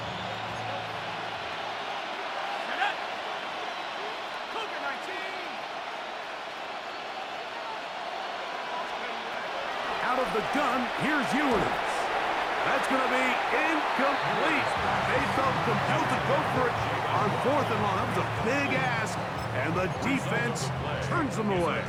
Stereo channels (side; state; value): both; identical; correlation 1.00